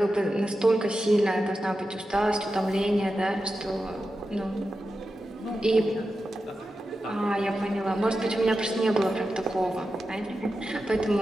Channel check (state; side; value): normal; both; correlation 0.91